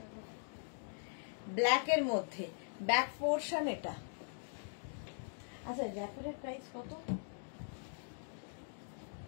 ব্ল্যাকের মধ্যে ব্যাক পোর্শন এটা। আচ্ছা, র্যাপারের প্রাইস কত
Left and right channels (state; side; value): silent; right; digital silence